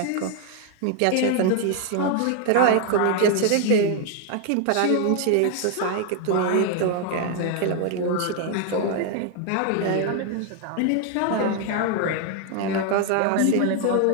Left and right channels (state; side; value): different; both; correlation 0.00